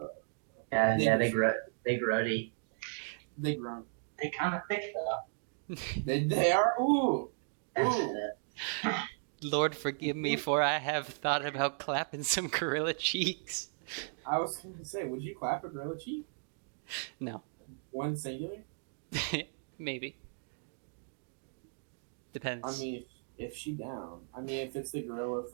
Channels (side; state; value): left; silent; digital silence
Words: They grody. They grunt. They kind of thick though. They are. Ooh. Lord forgive me, for I have thought about clapping some gorilla cheeks. I was going to say, would you clap a gorilla cheek? No. One singular? Maybe. Depends. I mean, if she down. I mean, if it's the gorilla